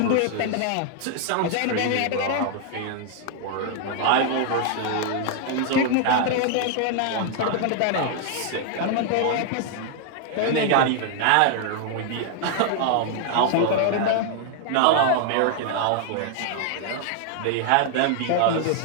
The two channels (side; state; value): both; different; correlation 0.00